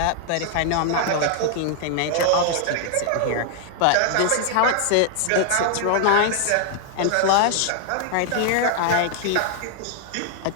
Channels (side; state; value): both; different; correlation 0.00